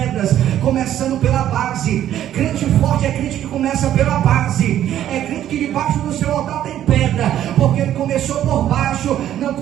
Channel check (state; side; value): quieter; left; 11.5 dB